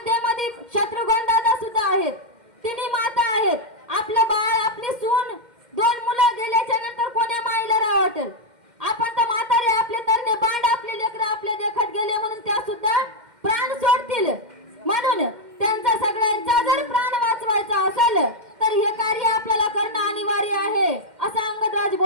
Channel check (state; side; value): late; left; 2.1 ms